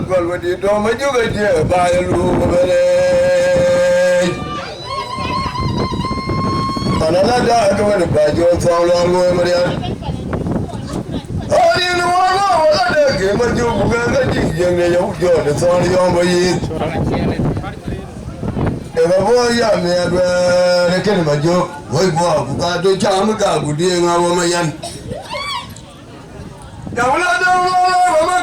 còn mà đi đâu mấy chú cái gì bài luôn mà đây ta nói là đã cái này bài vô xong rồi mà đi ôi đi nó là để cái mà chú cũng cái gì này giống cho nó xong đi ông bây giờ em bảo giờ mẹ về cái mà chú với bố cũng cả tôi cha mới cả cũng đi ngao mà yan đâu là mà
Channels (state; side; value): identical; both; correlation 1.00